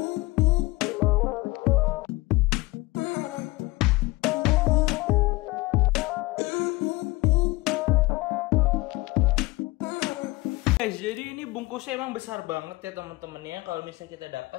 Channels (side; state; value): right; quieter; 21.5 dB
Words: Guys, jadi ini bungkusnya emang besar banget ya teman-teman ya. Kalau misalnya kita